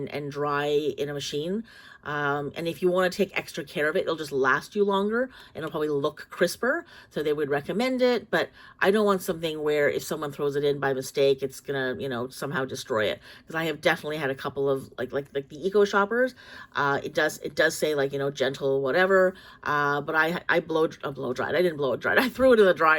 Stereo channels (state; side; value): identical; both; correlation 1.00